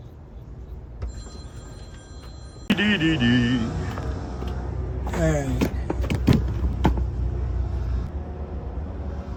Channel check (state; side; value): identical; both; correlation 1.00